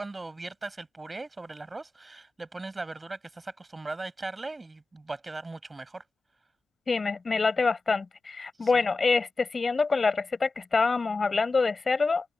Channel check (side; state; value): right; quieter; 3.6 dB